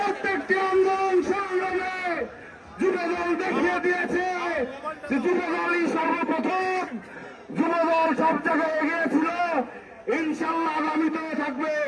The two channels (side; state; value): both; identical; correlation 1.00